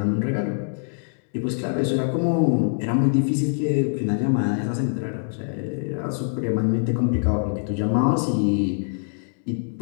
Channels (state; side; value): silent; right; digital silence